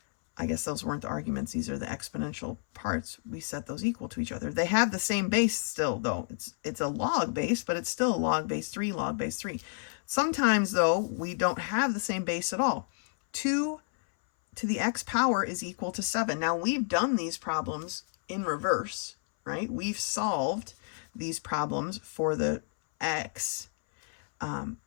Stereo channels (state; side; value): silent; right; 57 dB below the other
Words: I guess those weren't the arguments. These are the exponential parts. We set those equal to each other. They have the same base still, though. It's a log base, but it's still log base 3, log base 3. Sometimes, though, we don't have the same base at all. 2 to the x power is equal to 7. Now, we've done these problems in reverse, right? We've solved these problems for the x,